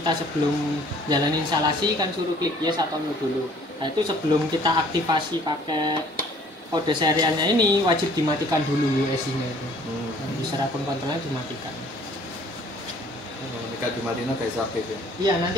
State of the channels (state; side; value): normal; both; correlation 0.56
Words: sebelum jalan instalasi kan suruh klik yes atau no dulu. Nah, itu sebelum kita aktivasi pakai kode serialnya ini wajib dimatikan dulu USI-nya itu. User akun kontrolnya dimatikan. Jika dimatiin kayak aktif ya? Iya,